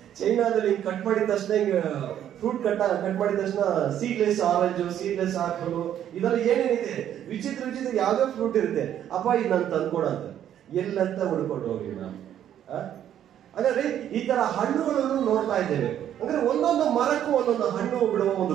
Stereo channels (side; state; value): left; quieter; 10.6 dB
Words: ಚೈನಾದಲ್ಲಿ ಕಟ್ ಮಾಡಿದ ತಕ್ಷಣ ಫ್ರೂಟ್ ಕಟ್ ಮಾಡಿದ ತಕ್ಷಣ ಸೀಡ್ಲೆಸ್ ಆರೆಂಜ್, ಸೀಡ್ಲೆಸ್ ಆಪಲ್, ಇದೆಲ್ಲ ಏನೇನಿದೆ ವಿಚಿತ್ರ ಯಾವ್ದೋ ಫ್ರೂಟ್ ಇರುತ್ತೆ. ಅಪ್ಪ ಇದು ನಾನು ತಂದ್ಕೊಡಂತ ಎಲ್ಲಂತ ಹುಡ್ಕೊಂಡು ಹೋಗಿ ನಾನು. ಹಾಗಾದ್ರೆ ಈ ತರ ಹಣ್ಣುಗಳನ್ನು ನೋಡ್ತಾ ಇದ್ದೇವೆ. ಅಂದ್ರೆ ಒಂದೊಂದು ಮರಕ್ಕೂ ಒಂದೊಂದು ಹಣ್ಣು ಬಿಡುವ